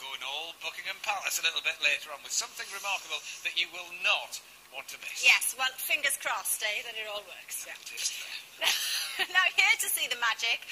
all Buckingham Palace a little bit later on with something remarkable that you will not want to miss. Yes, well, fingers crossed, that it all works. Yeah, it is there. Now, here to see the magic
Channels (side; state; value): both; identical; correlation 1.00